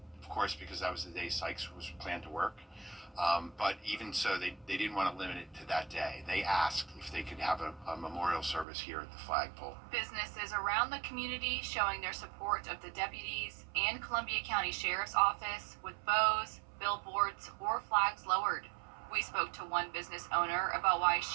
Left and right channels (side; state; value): left; drops out; at 8.7 s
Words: of course, because that was the day Sykes was planned to work. But even so, they didn't want to limit it to that day. They asked if they could have a memorial service here at the flagpole. Businesses around the community showing their support of the deputies and Columbia County Sheriff's Office with bows, billboards, or flags lowered. We spoke to one business owner about why